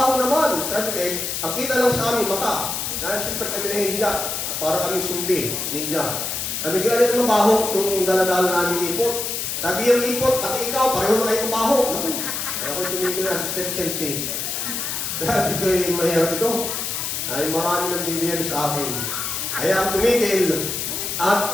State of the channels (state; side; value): noise; left; hiss, 3 dB below the sound